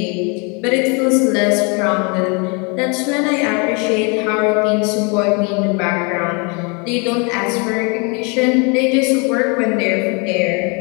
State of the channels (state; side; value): quieter; right; 32.7 dB